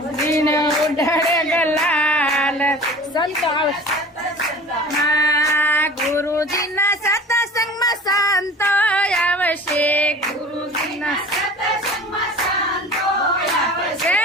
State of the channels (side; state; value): both; normal; correlation 0.41